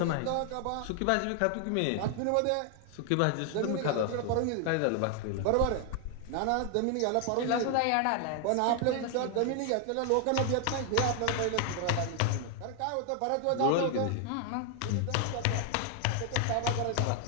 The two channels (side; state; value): both; different; correlation 0.00